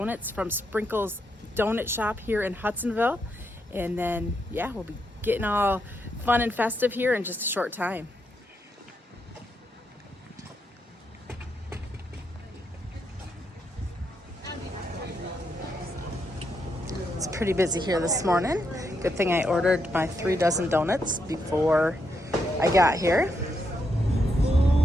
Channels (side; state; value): both; normal; correlation 0.80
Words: from Sprinkle's Donut Shop here in Hudsonville, and then we'll be getting all fun and festive here in just a short time. It's pretty busy here this morning. Good thing I ordered my 3 dozen donuts before I got here.